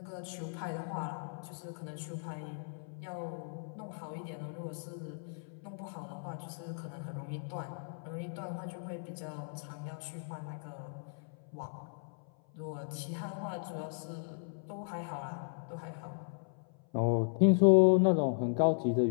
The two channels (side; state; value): right; silent; 54 dB below the other